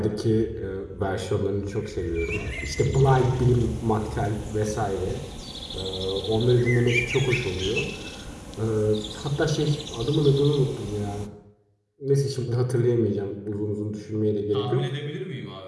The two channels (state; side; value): identical; both; correlation 1.00